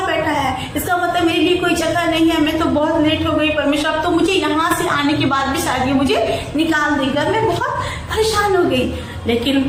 बैठा है, इसका मतलब मेरे लिए कोई जगह नहीं है, मैं तो बहुत लेट हो गई परमेश्वर, अब तो मुझे यहाँ से आने के बाद भी शायद ये मुझे निकाल देगा। मैं बहुत परेशान हो गई,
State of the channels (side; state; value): both; identical; correlation 1.00